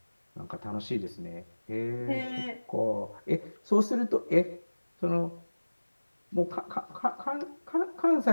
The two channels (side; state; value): both; inverted; correlation -1.00